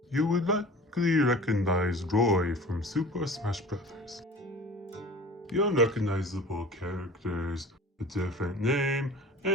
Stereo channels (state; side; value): normal; both; correlation 0.41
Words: you would likely recognize Roy from Super Smash Bros. The unrecognizable characters, a different name,